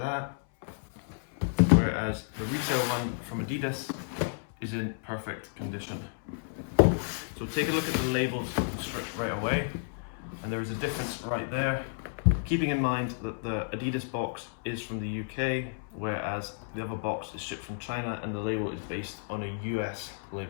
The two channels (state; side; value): silent; right; 57 dB below the other